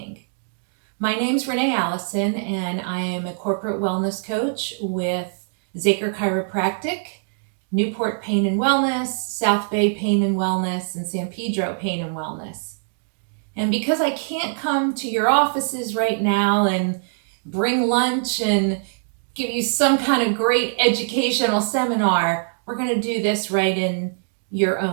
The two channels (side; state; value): left; silent; digital silence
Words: My name's Renee Alison, and I am a corporate wellness coach with Zaker Chiropractic, Newport Pain and Wellness, South Bay Pain and Wellness, and San Pedro Pain and Wellness. And because I can't come to your offices right now and bring lunch and give you some kind of great educational seminar, we're going to do this right in your